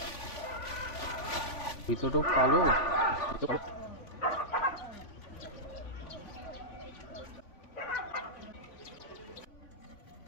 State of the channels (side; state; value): right; late; 3.5 ms